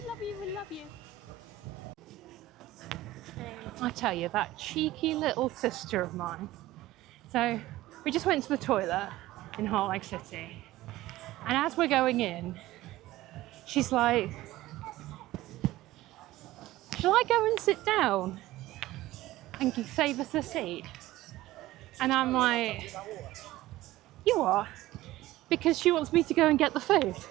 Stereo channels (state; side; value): quieter; left; 15.7 dB